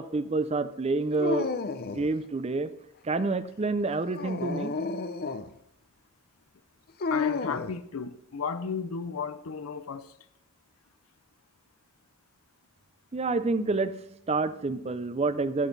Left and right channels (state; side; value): normal; both; correlation 0.35